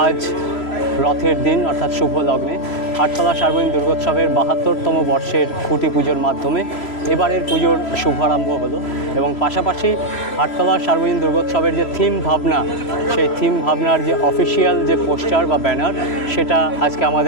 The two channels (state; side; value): late; right; 3.0 ms